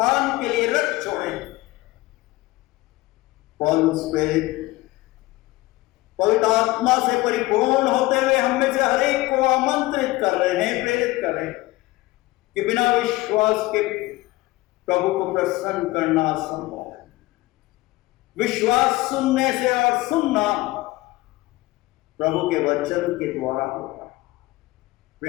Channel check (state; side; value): quieter; right; 19.6 dB